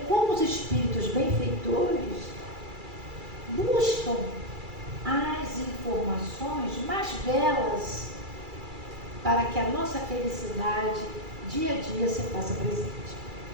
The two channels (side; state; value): left; late; 2.3 ms